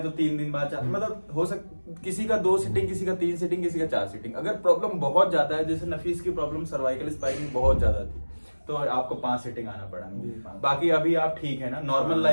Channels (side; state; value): both; inverted; correlation -1.00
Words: तो 3 दिन बाद मतलब हो किसी का 2 सीटिंग, किसी का 3 सीटिंग, किसी का 4 सीटिंग। अगर प्रॉब्लम बहुत ज्यादा है, जैसे नफीस की प्रॉब्लम सर्वाइकल स्पाइन बहुत ज्यादा थी, तो आपको 5 सीटिंग आना पड़ा। बाकी अभी आप ठीक है ना? नॉर्मल